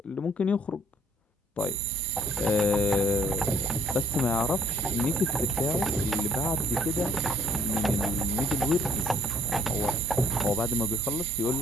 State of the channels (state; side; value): normal; both; correlation 0.56